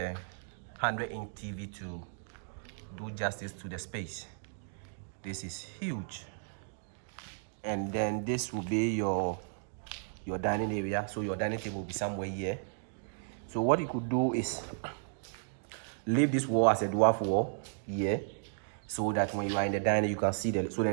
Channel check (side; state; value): left; silent; digital silence